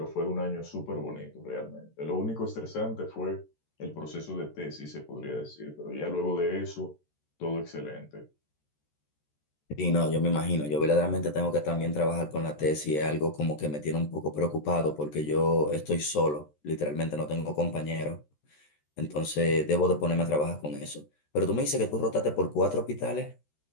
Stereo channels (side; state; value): right; late; 13 ms